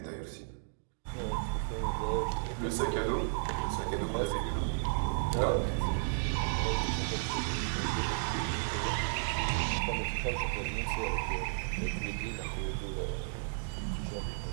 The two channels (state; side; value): silent; left; digital silence